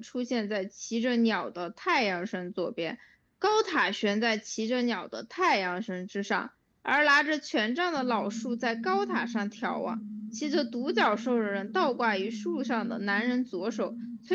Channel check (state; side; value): identical; both; correlation 1.00